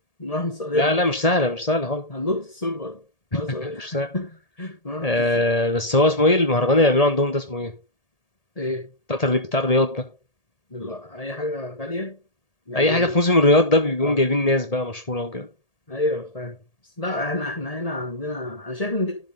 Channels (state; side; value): late; right; 1.8 ms